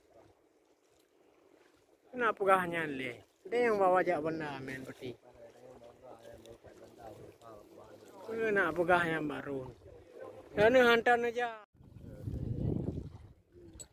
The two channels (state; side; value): identical; both; correlation 1.00